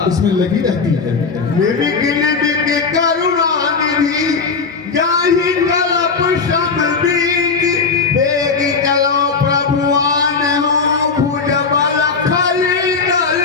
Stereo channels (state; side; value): quieter; right; 4.8 dB